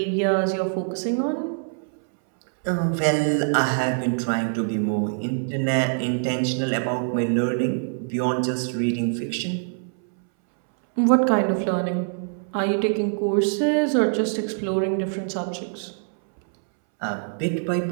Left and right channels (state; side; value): silent; left; 63 dB below the other